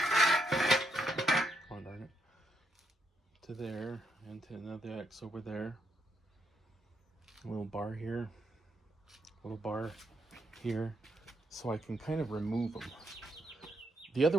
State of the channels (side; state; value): both; normal; correlation 0.78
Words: Oh, darn it. To there, and to another X over there. A little bar here, a little bar here, so I can kind of remove them. The